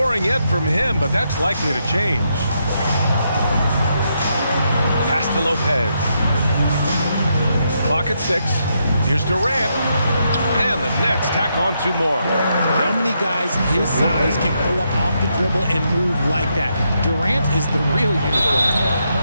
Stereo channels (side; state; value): both; inverted; correlation -0.80